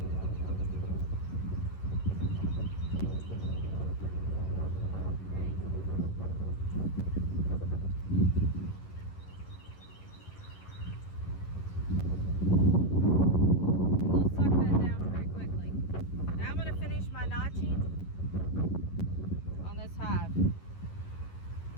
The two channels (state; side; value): late; right; 11 ms